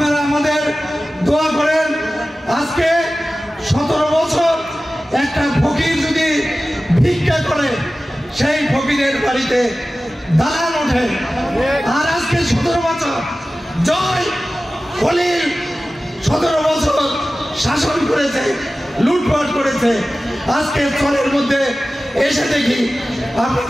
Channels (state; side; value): normal; both; correlation 0.96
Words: আমাদের দোয়া করেন। আজকে 17 বছর একটা ফকির যদি ভিক্ষা করে, সেই ফকিরের বাড়িতে দালান ওঠে। আর আজকে 17 বছর জয় খলিল 17 বছর শাসন করেছে, লুটপাট করেছে। আজকে চরের মধ্যে এসে দেখি